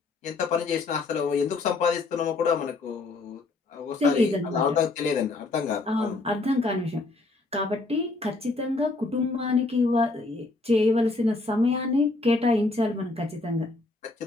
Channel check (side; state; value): right; quieter; 3.4 dB